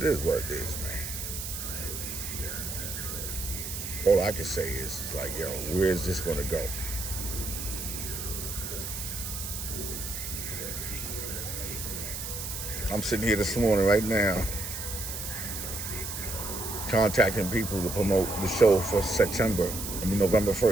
is what it is, man. all I can say is like, yo, where is this gonna go? I'm sitting here this morning right now contacting people to promote the show for November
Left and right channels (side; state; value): right; noise; hiss, 6 dB below the sound